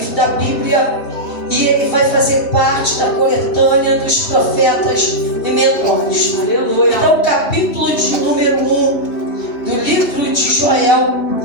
da Bíblia, e ele vai fazer parte da coletânea dos profetas menores. Aleluia. Então o capítulo de número 1 do livro livro de Joel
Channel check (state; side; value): late; right; 3.1 ms